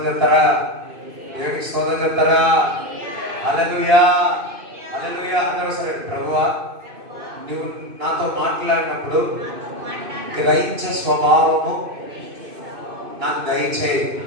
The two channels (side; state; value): left; late; 2.5 ms